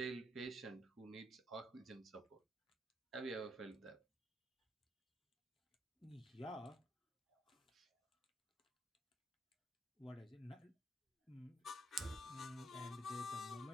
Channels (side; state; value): both; normal; correlation 0.75